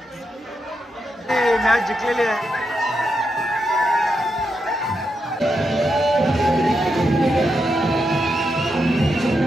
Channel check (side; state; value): both; normal; correlation 0.84